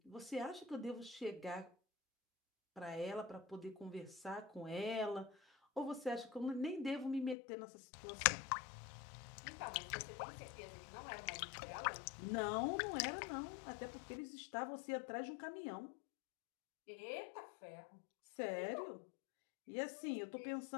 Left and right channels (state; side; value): drops out; right; at 7.4 s